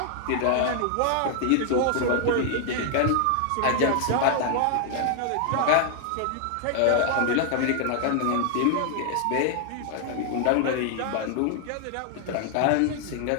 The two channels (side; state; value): both; different; correlation 0.00